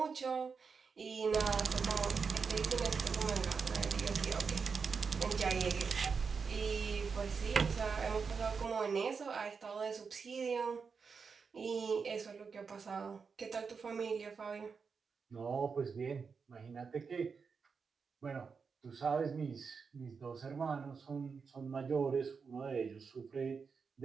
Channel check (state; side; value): quieter; left; 5.4 dB